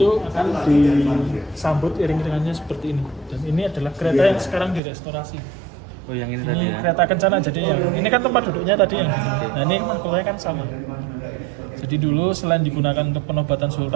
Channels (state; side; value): drops out; left; at 4.8 s